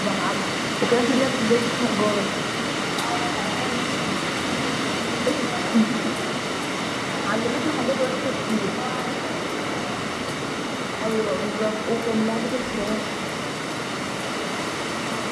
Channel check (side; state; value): both; identical; correlation 1.00